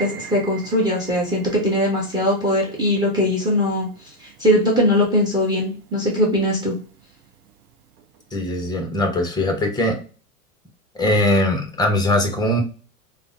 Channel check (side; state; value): both; normal; correlation 0.13